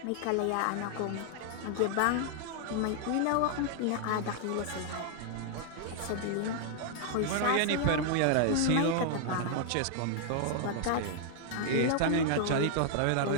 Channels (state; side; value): different; both; correlation 0.00